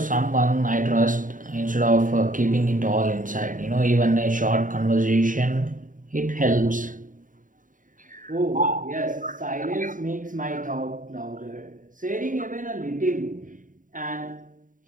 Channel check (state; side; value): late; left; 0.38 ms